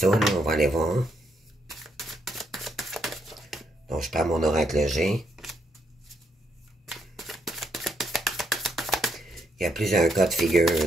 là, on va aller voir. Donc, je prends mon oracle G. Il y a plusieurs cas de figure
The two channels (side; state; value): both; normal; correlation 0.76